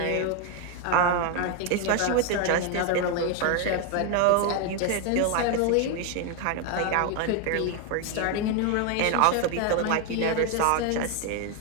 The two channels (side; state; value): both; different; correlation 0.01